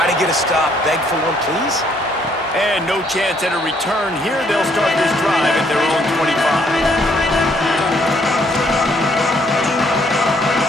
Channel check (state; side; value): normal; both; correlation 0.67